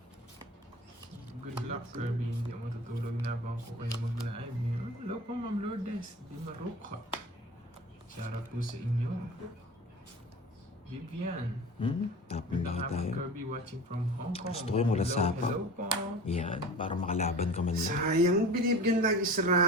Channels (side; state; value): both; normal; correlation 0.36